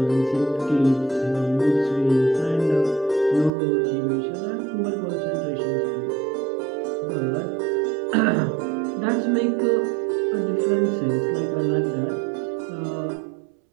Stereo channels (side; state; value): left; drops out; at 3.5 s